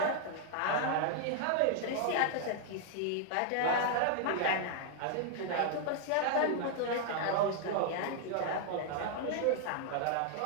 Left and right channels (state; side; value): different; both; correlation 0.00